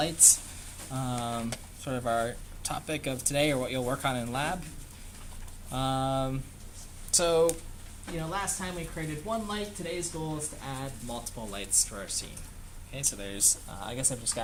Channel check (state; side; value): identical; both; correlation 1.00